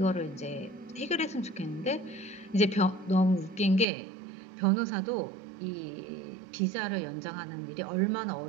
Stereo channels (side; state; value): left; drops out; at 3.9 s